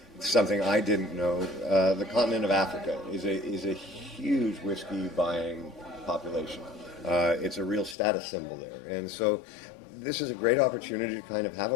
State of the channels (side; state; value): right; drops out; at 8.0 s